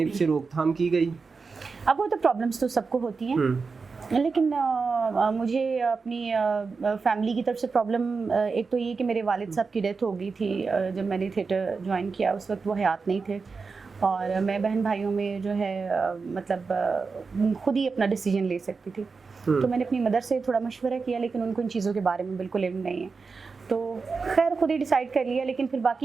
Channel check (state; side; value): quieter; left; 4.7 dB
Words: से रोकथाम की गई? अब वो तो प्रॉब्लम्स तो सबको होती हैं, लेकिन मुझे अपनी फैमिली की तरफ से प्रॉब्लम एक तो ये कि मेरे वालिद साहब की डेथ हो गई थी जब मैंने थिएटर ज्वाइन किया। उस वक्त वो हयात नहीं थे और मैं बहन भाइयों में जो है मतलब खुद ही अपना डिसीजन ले सकती थी। तो मैंने अपनी मदर से थोड़ा मशवरा किया, लेकिन उनको इन चीज़ों के बारे में बिल्कुल इल्म नहीं है, तो खैर खुद ही डिसाइड कर लिया। लेकिन फिर